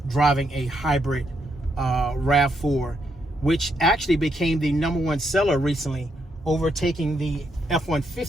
driving a hybrid RAV4, which actually became the #1 seller recently, overtaking the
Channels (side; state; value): both; normal; correlation 0.78